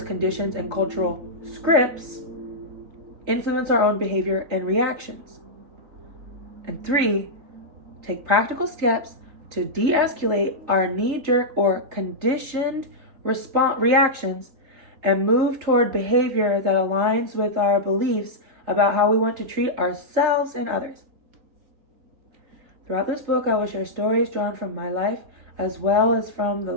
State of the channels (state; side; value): late; left; 3.7 ms